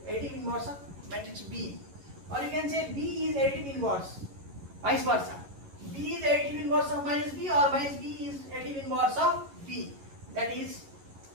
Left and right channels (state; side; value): late; left; 11 ms